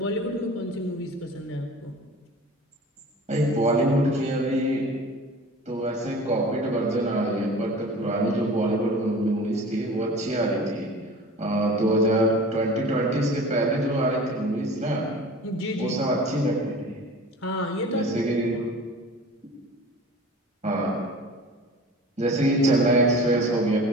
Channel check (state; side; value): normal; both; correlation 0.40